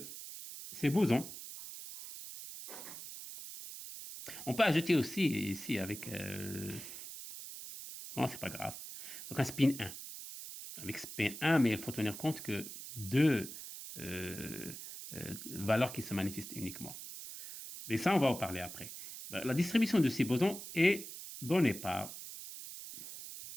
ces bosons, on peut ajouter aussi ici avec, non, c'est pas grave, donc un spin 1. Avec spin 1, mais il faut tenir compte que deux valeurs qui se manifestent uniquement. Mais ça, on va en parler après. La distribution de ces bosons est donnée par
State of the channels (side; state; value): right; noise; hiss, 11 dB below the sound